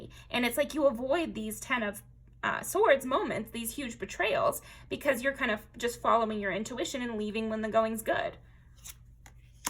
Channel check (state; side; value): identical; both; correlation 1.00